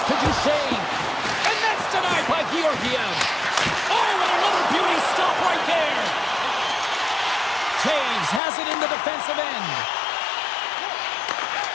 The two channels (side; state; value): right; drops out; at 8.4 s